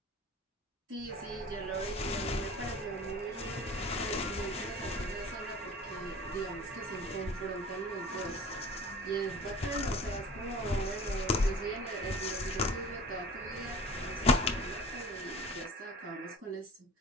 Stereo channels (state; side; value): normal; both; correlation 0.42